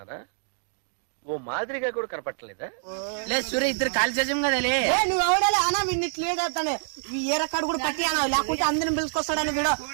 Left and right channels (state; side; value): silent; left; digital silence